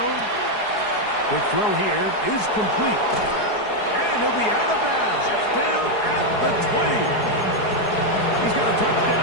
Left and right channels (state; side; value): late; right; 4.8 ms